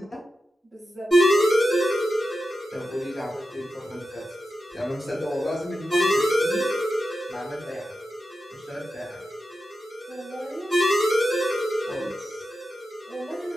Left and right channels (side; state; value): both; normal; correlation 0.90